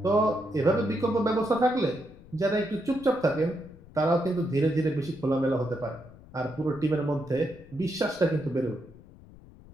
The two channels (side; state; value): left; noise; rumble, 21 dB below the sound